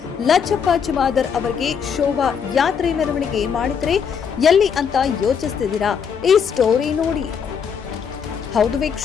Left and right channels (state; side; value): quieter; right; 6.9 dB